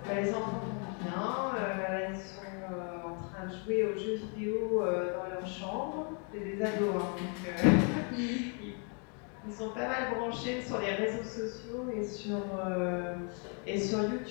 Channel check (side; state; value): right; quieter; 39.0 dB